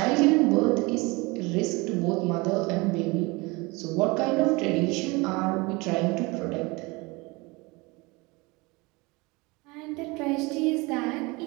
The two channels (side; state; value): left; quieter; 25.1 dB